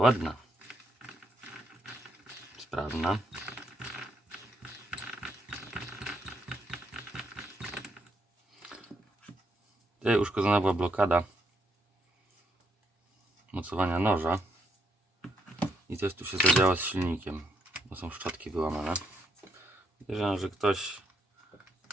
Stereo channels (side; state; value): both; normal; correlation 0.76